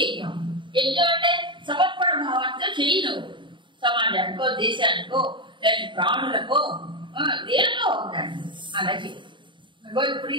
యజ్ఞం అంటే సమర్పణ భావంతో చేయను. సమాజానికో దేశానికో లేదా ప్రాణులకో దేనికో ఉందండి అలా చేయాలి. భగవత్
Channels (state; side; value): late; left; 0.23 ms